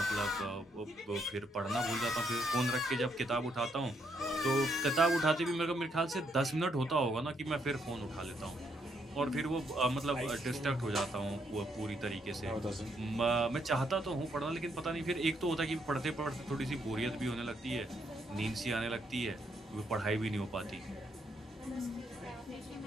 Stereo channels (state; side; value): normal; both; correlation 0.75